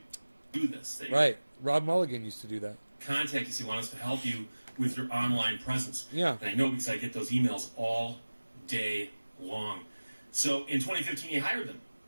this. They right. Rob Mulligan used to do that. Contact us. He wants us to help you with your online presence. Yeah. And I know because I get those emails all day long. So in 2015, he hired them.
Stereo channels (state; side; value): inverted; both; correlation -1.00